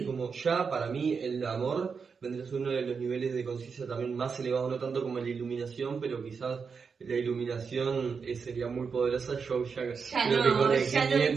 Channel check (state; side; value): quieter; left; 5.6 dB